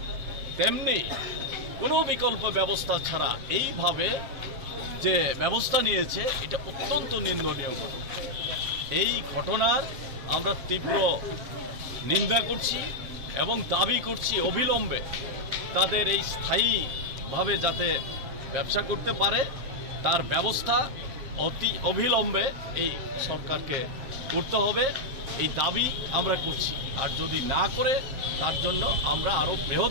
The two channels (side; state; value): left; late; 7.5 ms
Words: তেমনি কোনো বিকল্প ব্যবস্থা ছাড়া এইভাবে যে ব্যবস্থা নিয়েছে, এটা অত্যন্ত নিন্দনীয় ঘটনা। এই ঘটনার আমরা তীব্র নিন্দা করছি এবং দাবি করছি অবিলম্বে তাদের এই স্থায়ীভাবে যাতে ব্যবসা করতে পারে তার ব্যবস্থা অতি অবিলম্বে এই সরকারকে করতে হবে, এই দাবি আমরা করছি। আর যদি না করে তার জন্য আমরা আরও